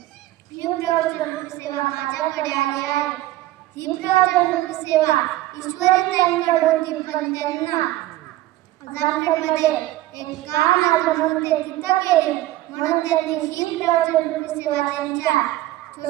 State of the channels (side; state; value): left; quieter; 16.1 dB